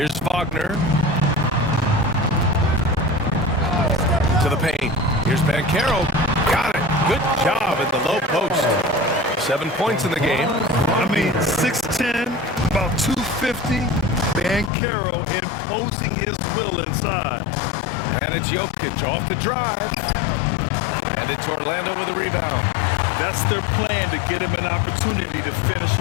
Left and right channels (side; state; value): right; drops out; at 14.7 s